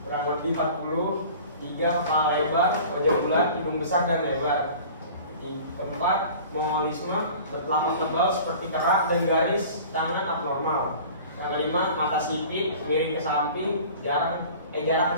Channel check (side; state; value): both; inverted; correlation -0.43